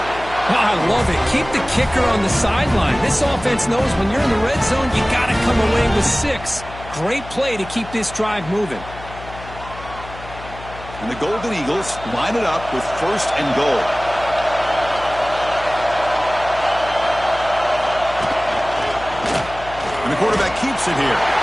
I love it. Keep the kicker on the sideline. This offense knows when you're in the red zone, you got to come away with 6. Great play to keep this drive moving. And the Golden Eagles line it up with first and goal. And the quarterback keeps it here.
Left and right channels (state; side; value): noise; left; hum, 15 dB below the sound